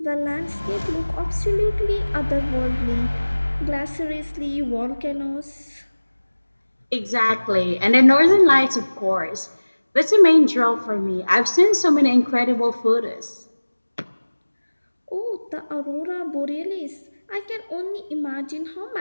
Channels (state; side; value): inverted; both; correlation -1.00